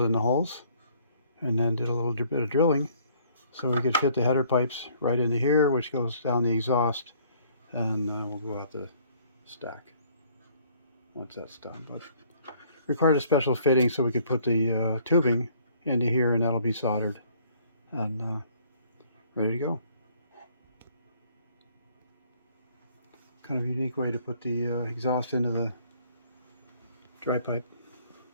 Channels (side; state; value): both; inverted; correlation -0.60